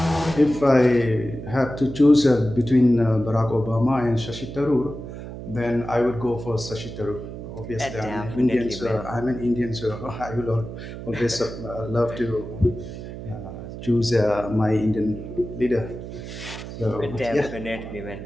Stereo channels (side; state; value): right; noise; hum, 10 dB below the sound